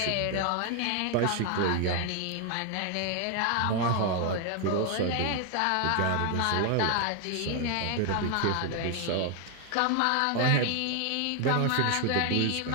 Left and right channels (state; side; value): different; both; correlation 0.01